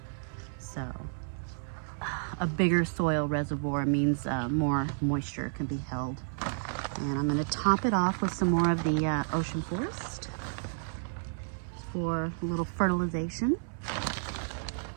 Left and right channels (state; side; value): silent; left; 57 dB below the other